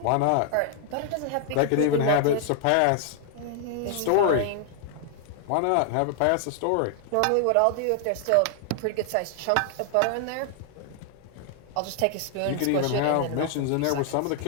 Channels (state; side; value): different; both; correlation 0.00